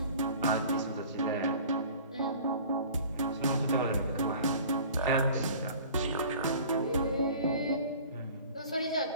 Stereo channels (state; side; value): inverted; both; correlation -0.45